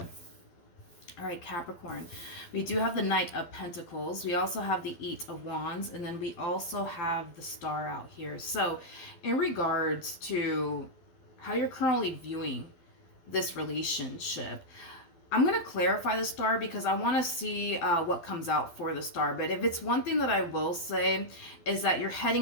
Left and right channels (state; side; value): late; right; 12 ms